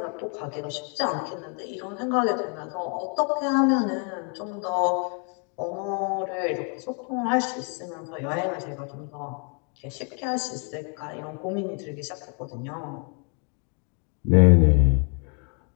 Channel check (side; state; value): right; quieter; 38.4 dB